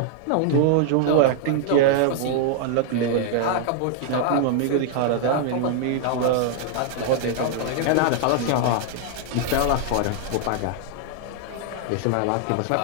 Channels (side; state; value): both; different; correlation -0.01